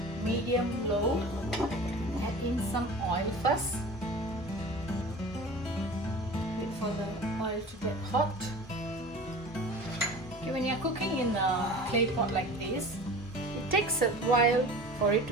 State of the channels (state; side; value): normal; both; correlation 0.39